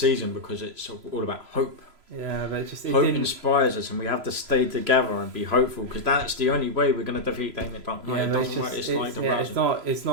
because it's all about hope. Yeah, but hope inspires us, and we have to stay together and be hopeful, because that's the only way we're going to defeat Damien Dark. Yeah, it's not.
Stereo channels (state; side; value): late; left; 3.0 ms